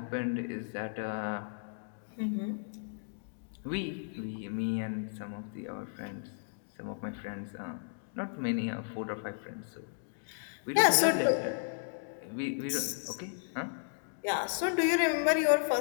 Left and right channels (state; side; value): silent; right; digital silence